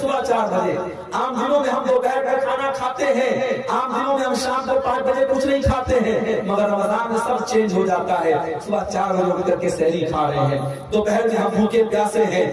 4 بجے، عام دنوں میں ہم دوپہر کا کھانا کھاتے ہیں، عام دنوں میں ہم شام کو 5 بجے کچھ نہیں کھاتے ہیں، مگر رمضان میں سب چینج ہو جاتا ہے۔ صبح 4 بجے اٹھ کر کے سحری کھا رہے ہیں، دوپہر میں ہم بھوکے پیاسے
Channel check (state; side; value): identical; both; correlation 1.00